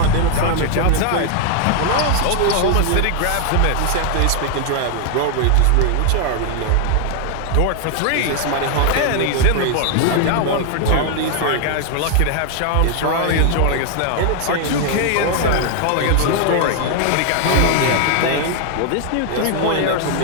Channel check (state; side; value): different; both; correlation 0.00